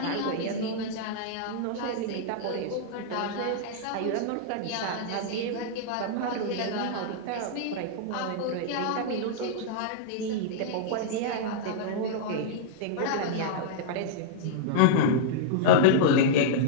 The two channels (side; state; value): both; different; correlation -0.02